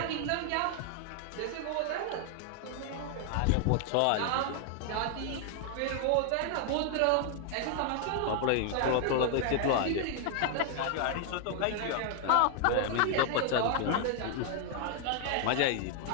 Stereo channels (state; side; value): different; both; correlation 0.00